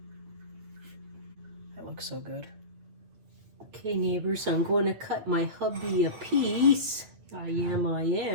That looks so good. Okay, neighbors, I'm going to cut my hubby a piece. I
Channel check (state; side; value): late; left; 8.9 ms